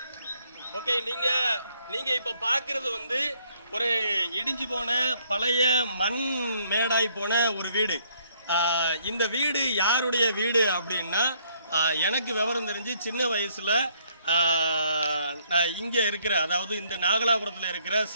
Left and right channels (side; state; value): both; inverted; correlation -0.67